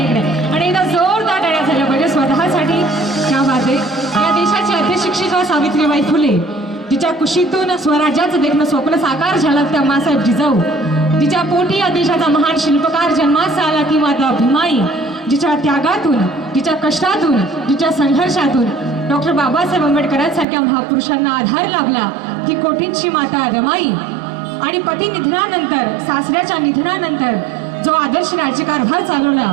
इकडे आणि एकदा जोरदार टाळ्या झाल्या पाहिजे स्वतःसाठी. त्या वादे या देशाची अध्यशिक्षिका सावित्रीबाई फुले जिच्या कुशीतून स्वराज्याचं देखणं स्वप्न साकार झालं त्या मासाहेब जिजाऊ जिच्या पोटी या देशाचा महान शिल्पकार जन्मास आला ती माता भीमाई जिच्या त्यागातून जिच्या कष्टातून जिच्या संघर्षातून डॉक्टर बाबासाहेब आंबेडकरांसारख्या महापुरुषांना आधार लाभला ती कोटींची माता रमाई आणि पती निधनानंतर सासऱ्याच्या निधनानंतर जो आदर्श राज्यकारभार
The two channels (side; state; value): left; drops out; at 20.5 s